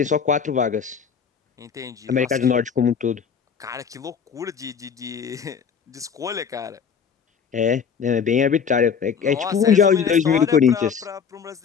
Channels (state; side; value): quieter; right; 6.7 dB